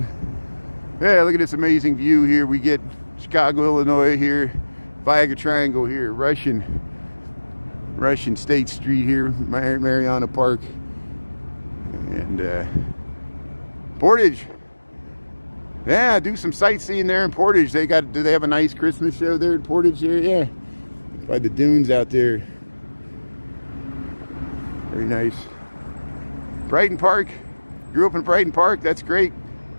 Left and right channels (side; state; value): both; inverted; correlation -1.00